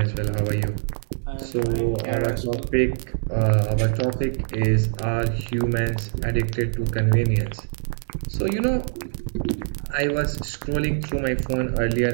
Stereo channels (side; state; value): left; silent; digital silence